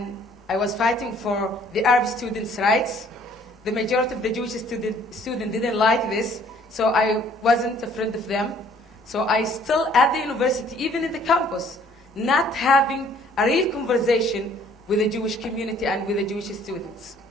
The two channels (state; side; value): normal; both; correlation 0.58